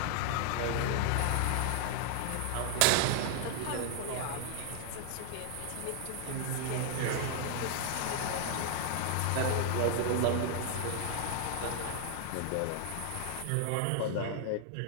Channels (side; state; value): both; different; correlation 0.00